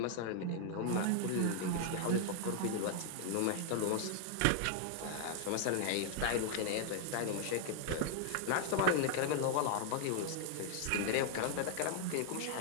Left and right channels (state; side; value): different; both; correlation 0.00